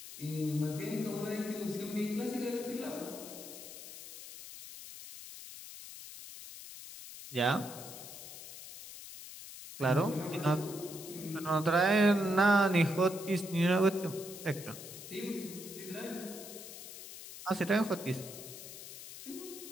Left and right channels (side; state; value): left; noise; hiss, 13 dB below the sound